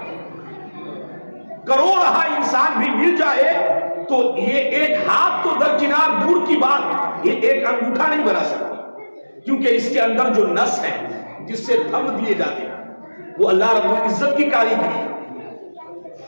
کروڑہ انسان بھی مل جائے تو یہ ایک ہاتھ تو درکنار دور کی بات، یہ ایک انگوٹھا نہیں بنا سکتا. کیونکہ اس کے اندر جو نس ہے جس سے تھم دیے جاتے ہیں وہ اللہ رب العزت کی کاریگری ہے،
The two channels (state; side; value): inverted; both; correlation -1.00